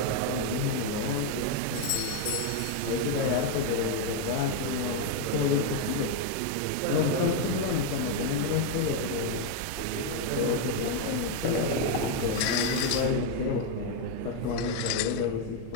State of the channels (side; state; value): both; different; correlation 0.01